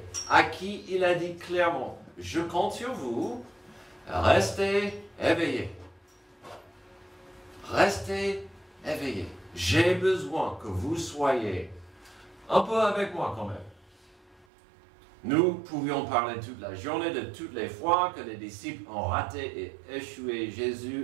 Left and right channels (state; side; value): drops out; left; at 14.5 s